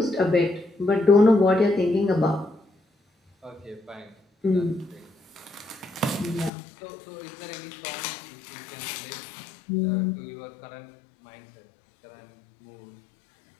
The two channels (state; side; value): drops out; right; at 6.5 s